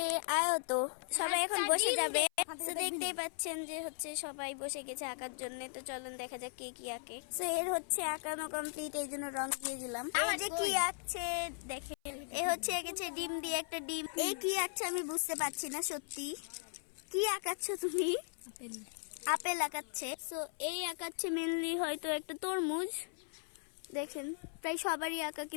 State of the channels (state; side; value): silent; right; 53 dB below the other